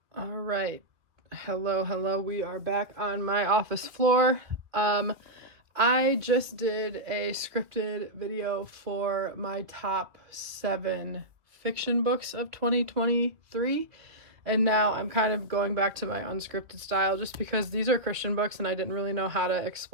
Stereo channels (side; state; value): left; late; 2.7 ms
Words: All right. Hello. We are back on my office floor. I just did a scripted video for my top 7 fiction books of 2023. And now I'm kind of going back to my unscripted style just because these are Christian books and I didn't really know how to